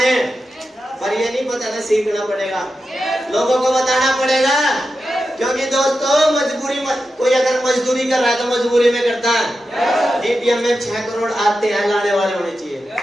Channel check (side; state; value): both; normal; correlation 0.90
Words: पर ये नहीं पता था, सीखना पड़ेगा, लोगों को बताना पड़ेगा, क्योंकि दोस्तों मजबूरी कोई अगर मजदूरी कर रहा है तो मजबूरी में करता है। डीपीएम में 6 करोड़ आते हैं, लाने वाले होने चाहिए,